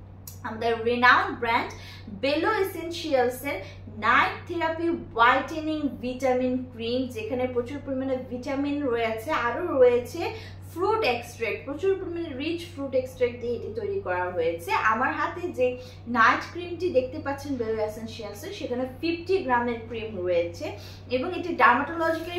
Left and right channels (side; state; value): both; identical; correlation 1.00